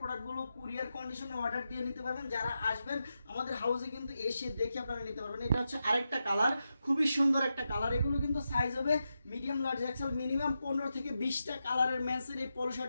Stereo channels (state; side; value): inverted; both; correlation -0.88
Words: কুরিয়ার কন্ডিশনে অর্ডার দিয়ে নিতে পারবেন। যারা আসবেন আমাদের হাউসে কিন্তু এসে দেখে আপনারা নিতে পারবেন। এটা হচ্ছে আরেকটা কালার, খুবই সুন্দর একটা কালার। এগুলো কিন্তু সাইজ হবে মিডিয়াম, লার্জ, এক্সেল। মিনিমাম 15 থেকে 20টা কালারের মেন্সের এই পলো